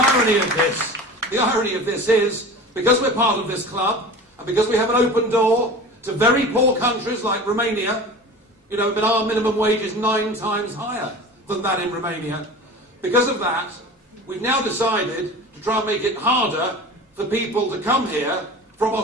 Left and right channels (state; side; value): normal; both; correlation 0.36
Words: irony of this is, because we're part of this club, and because we have an open door to very poor countries like Romania, but our minimum wage is 9 times higher than that in Romania. Because of that, we've now decided to try and make it harder for people to come here from